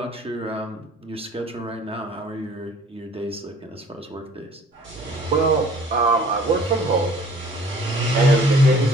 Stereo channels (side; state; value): both; normal; correlation 0.52